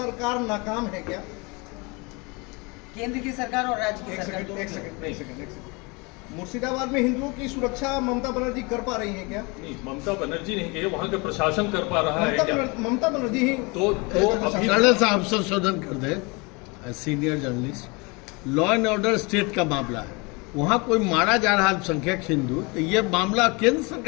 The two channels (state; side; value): quieter; right; 28.2 dB